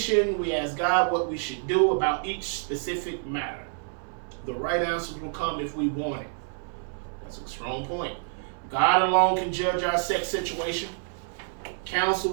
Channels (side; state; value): left; silent; 60 dB below the other